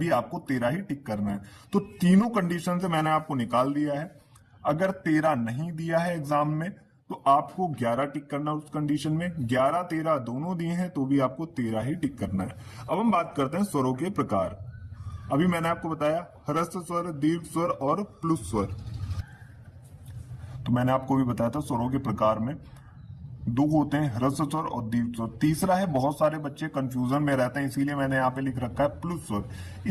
आपको 13 ही टिक करना है। तो तीनों कंडीशन से मैंने आपको निकाल दिया है। अगर 13 नहीं दिया है एग्जाम में तो आपको 11 टिक करना उस कंडीशन में, 11 13 दोनों दिए हैं तो भी आपको 13 ही टिक करना है। अब हम बात करते हैं स्वरों के प्रकार। अभी मैंने आपको बताया ह्रस्व स्वर, दीर्घ स्वर और प्लुत स्वर। तो मैंने आपको भी बताया था स्वरों के प्रकार में 2 होते हैं, ह्रस्व स्वर और दीर्घ स्वर। तीसरा है, बहुत सारे बच्चे कंफ्यूजन में रहते हैं इसीलिए मैंने यहाँ पे लिख रखा है प्लुत स्वर।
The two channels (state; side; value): identical; both; correlation 1.00